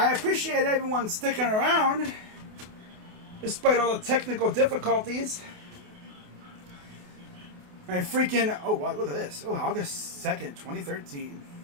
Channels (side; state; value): left; late; 28 ms